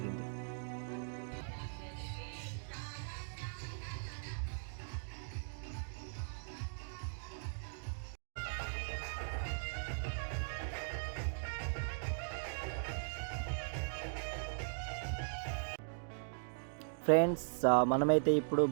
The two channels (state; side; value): silent; left; digital silence